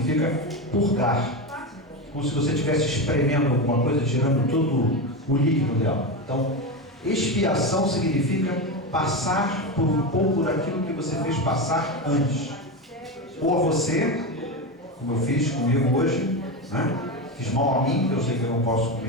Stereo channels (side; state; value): both; normal; correlation 0.17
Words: purgar, como se você estivesse espremendo alguma coisa, tirando todo o líquido dela. Então, expiação significa passar por um pouco daquilo que você fez passar antes. Ou a você, como eu fiz comigo hoje, né? Fiz mal a mim, eu sei que eu não posso